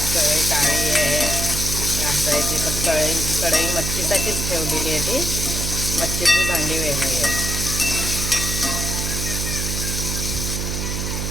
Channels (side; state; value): right; noise; hum, 2 dB below the sound